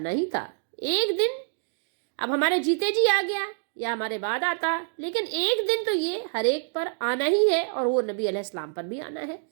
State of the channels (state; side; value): silent; left; 60 dB below the other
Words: ہی تھا. ایک دن اب ہمارے جیتے جی آ گیا یا ہمارے بعد آتا، لیکن ایک دن تو یہ ہر ایک پر آنا ہی ہے، اور وہ نبی علیہ السلام پر بھی آنا ہے.